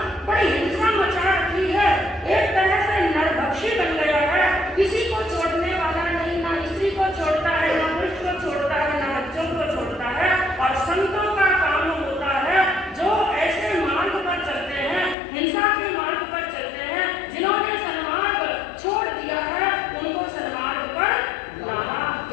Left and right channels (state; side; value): drops out; right; at 15.2 s